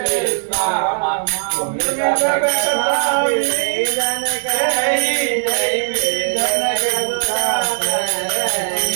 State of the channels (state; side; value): silent; left; digital silence